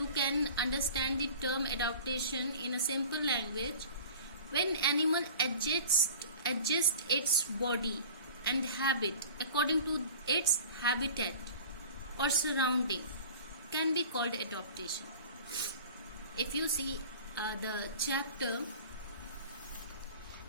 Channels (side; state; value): both; inverted; correlation -0.41